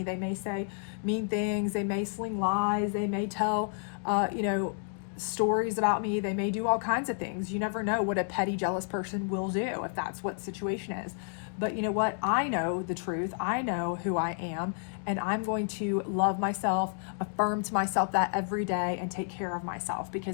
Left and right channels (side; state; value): right; silent; 57 dB below the other